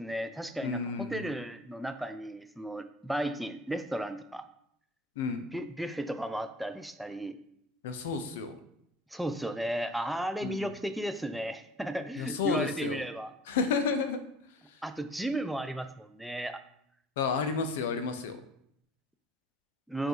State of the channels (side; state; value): both; normal; correlation 0.46